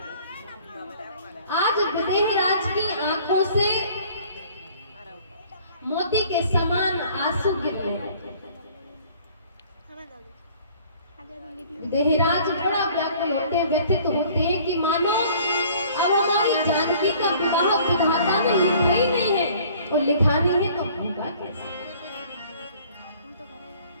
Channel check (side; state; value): both; inverted; correlation -0.53